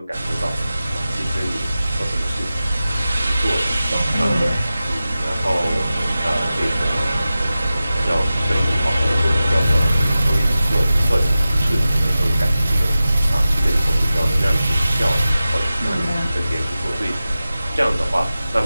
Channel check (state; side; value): inverted; both; correlation -0.95